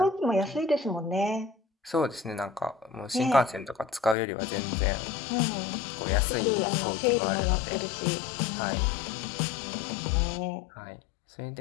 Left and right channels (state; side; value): drops out; right; at 4.2 s